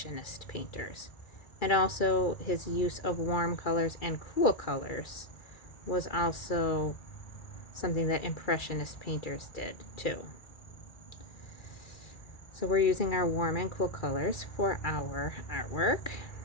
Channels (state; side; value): late; right; 2.3 ms